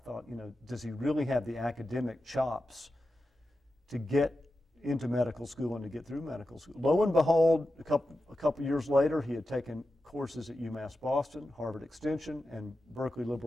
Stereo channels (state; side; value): normal; both; correlation 0.91